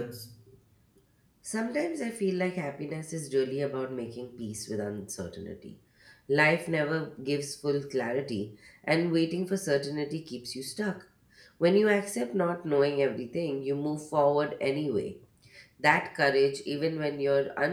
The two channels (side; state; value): both; identical; correlation 1.00